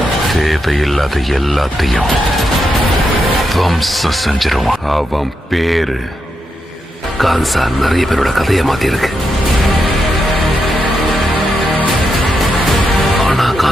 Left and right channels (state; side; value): normal; both; correlation 0.84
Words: தேவையில்லாத எல்லாத்தையும் வம்சம் செஞ்சிருவான். அவன் பேரு கான்சார் நிறைய பேரோட கதையை மாத்திருக்கு. ஆனா